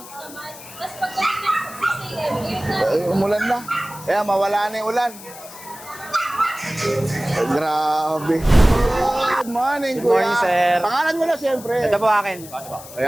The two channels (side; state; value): left; noise; hiss, 16 dB below the sound